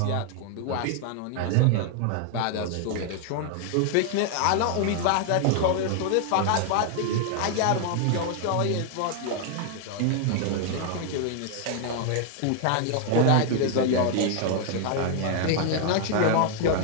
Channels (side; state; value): both; different; correlation 0.00